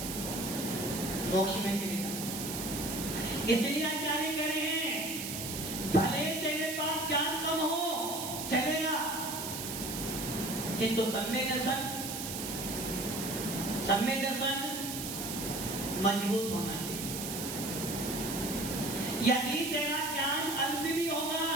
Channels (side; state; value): right; noise; hiss, 5 dB below the sound